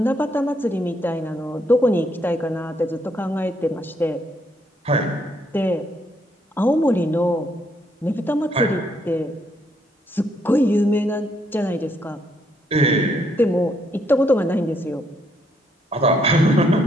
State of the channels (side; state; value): both; normal; correlation 0.73